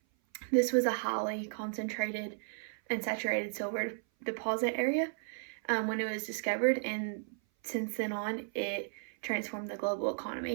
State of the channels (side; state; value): left; silent; 55 dB below the other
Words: This was a highly concentrated and saturated silver deposit area when it was discovered, and since then on, it transformed the global